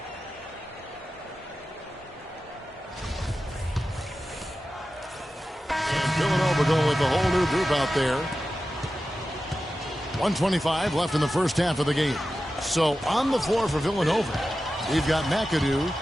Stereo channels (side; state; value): both; normal; correlation 0.93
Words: And Villanova going with the whole new group out there. 1:25 left in the first half of the game. So on the floor for Villanova, we've got McAdoo.